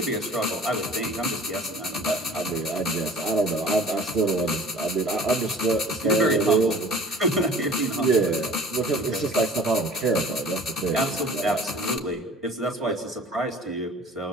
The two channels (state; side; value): normal; both; correlation 0.47